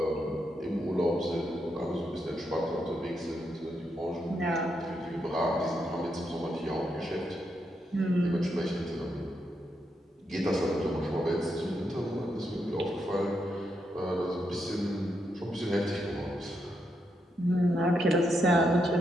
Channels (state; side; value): normal; both; correlation 0.81